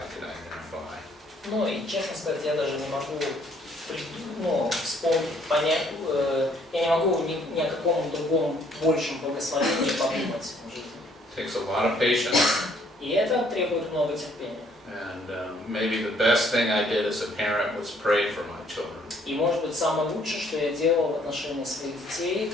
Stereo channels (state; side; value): normal; both; correlation 0.64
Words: could identify. Ну и честно сказать, я даже не могу вспомнить, понять, я не могу ни о каком другом большем благословении подумать в жизни. Takes a lot of patience. И это требует много терпения. And maybe the best thing I did as a parent was pray for my children. И может быть самое лучшее, что я делал в отношении своих детей,